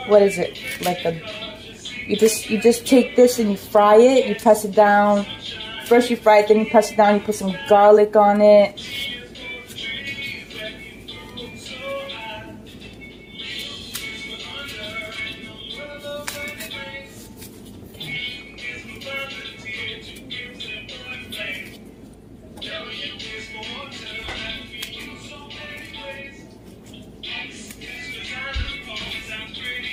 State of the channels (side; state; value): both; identical; correlation 1.00